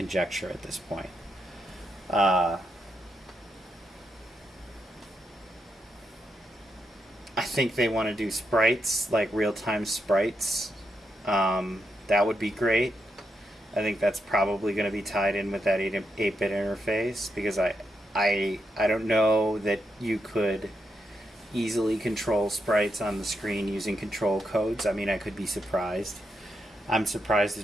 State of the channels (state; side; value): normal; both; correlation 0.83